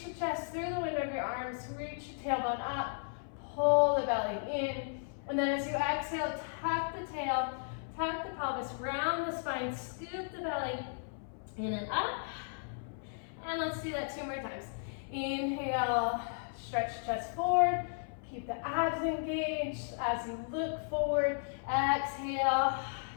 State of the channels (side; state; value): right; silent; 54 dB below the other